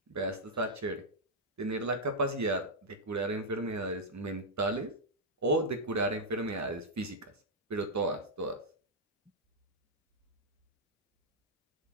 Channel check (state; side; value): normal; both; correlation -0.05